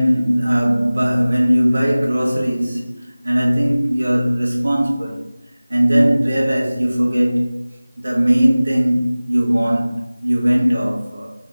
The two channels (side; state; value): both; inverted; correlation -0.98